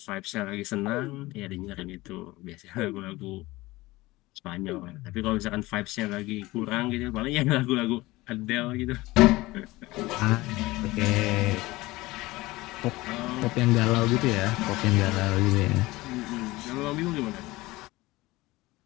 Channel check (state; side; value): quieter; right; 20.0 dB